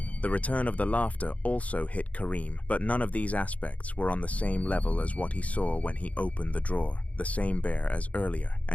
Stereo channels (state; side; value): late; right; 0.068 ms